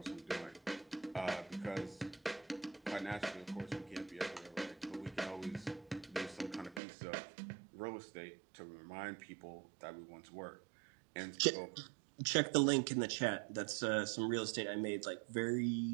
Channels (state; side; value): drops out; left; at 6.8 s